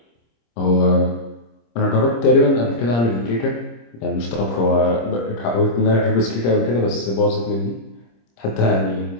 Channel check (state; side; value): late; right; 26 ms